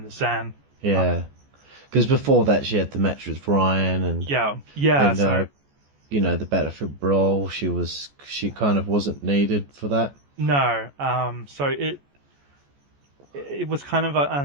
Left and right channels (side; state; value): left; late; 14 ms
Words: the Sand. Yeah. Because before that, she had the match with Ryan, and so the Battlefield Brawl. She kind of wasn't needed for that. No, so it was kind of